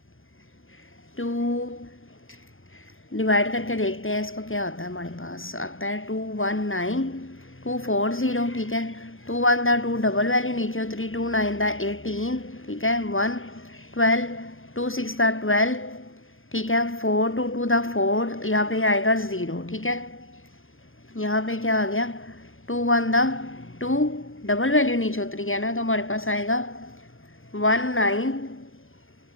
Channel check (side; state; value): right; late; 0.59 ms